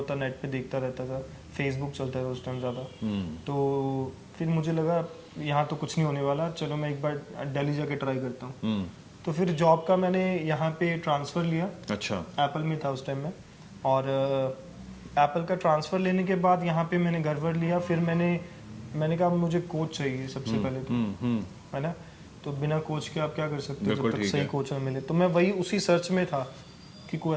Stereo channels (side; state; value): both; identical; correlation 1.00